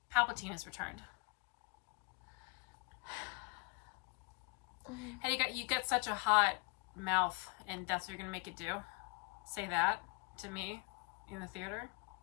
Palpatine has returned. Hey, you got such a hot mouth, and that's what you're gonna make it do? Say that to me in the theater?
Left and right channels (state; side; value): quieter; right; 30.1 dB